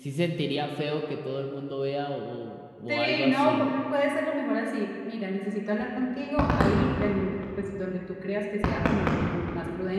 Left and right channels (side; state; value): both; identical; correlation 1.00